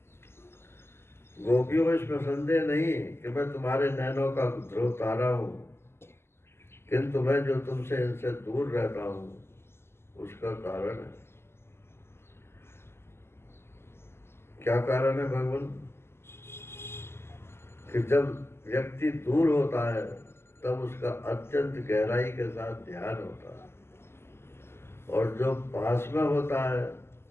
गोपियों, इसमें संदेह नहीं कि मैं तुम्हारे नैनों का ध्रुव तारा हूं, किंतु मैं जो तुमसे इनसे दूर रहता हूं उसका कारण है। क्या कारण है भगवान? कि जब व्यक्ति दूर होता है तब उसका अत्यंत गहराई के साथ ध्यान होता है, और जो पास में होता है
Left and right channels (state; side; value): late; right; 0.12 ms